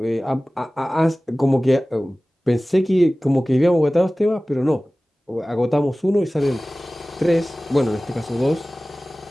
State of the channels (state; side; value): normal; both; correlation 0.97